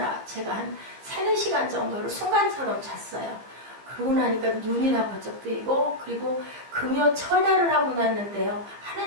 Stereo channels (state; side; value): late; left; 15 ms